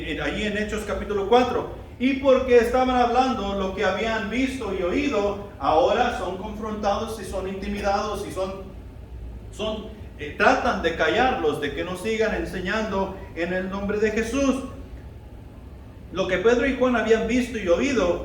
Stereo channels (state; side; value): identical; both; correlation 1.00